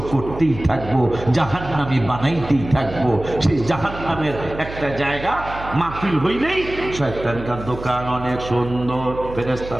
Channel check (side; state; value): right; noise; hum, 12 dB below the sound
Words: করতেই থাকবো, জাহান্নামী বানাইতেই থাকবো। সেই জাহান্নামের একটা জায়গা মাহফিল হইলেই শয়তানকার দোকান অনেক সুন্দর,